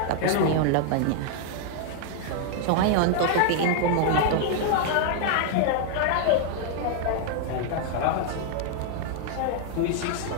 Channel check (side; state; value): both; different; correlation 0.00